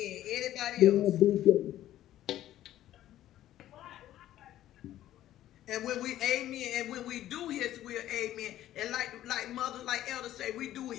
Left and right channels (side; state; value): right; quieter; 13.1 dB